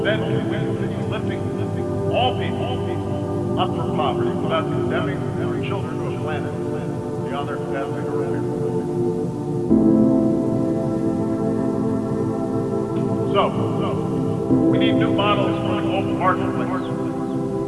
can we continue lifting all people up from poverty without condemning our children to a planet beyond their capacity to repair. So, we need new models for the global marketplace,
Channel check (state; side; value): identical; both; correlation 1.00